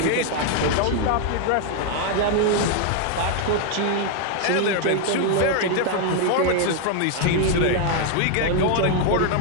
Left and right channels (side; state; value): both; different; correlation 0.00